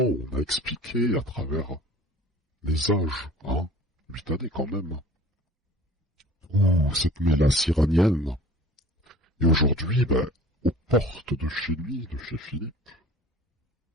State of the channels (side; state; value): both; normal; correlation 0.46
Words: on a expliqué à travers les âges, 8 années quand même, ou cette mélasse iranienne. Et aujourd'hui, aux portes de chez lui, de chez Philippe.